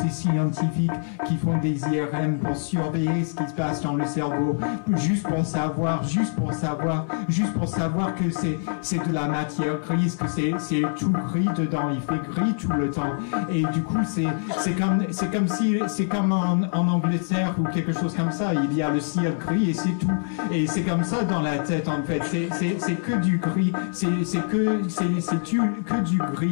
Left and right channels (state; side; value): silent; right; digital silence